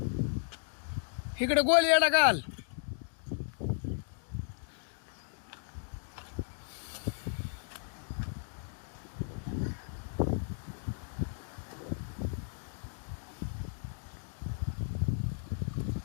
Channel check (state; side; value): silent; right; digital silence